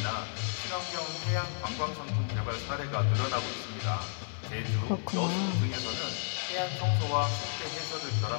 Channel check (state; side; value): silent; right; 56 dB below the other